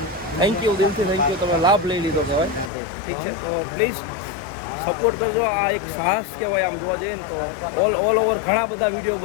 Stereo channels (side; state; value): right; drops out; at 2.7 s